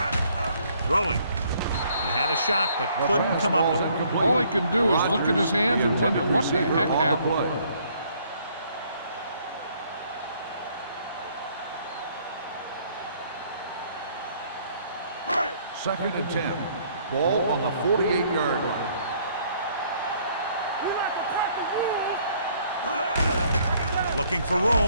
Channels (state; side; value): inverted; both; correlation -0.64